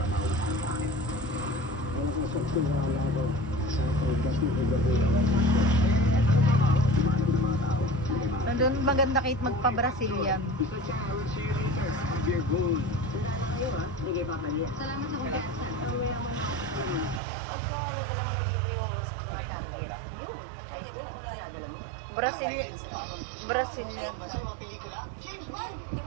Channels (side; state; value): left; drops out; at 17.2 s